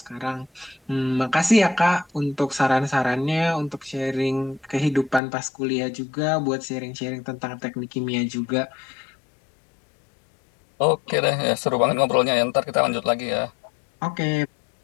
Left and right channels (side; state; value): right; drops out; at 5.2 s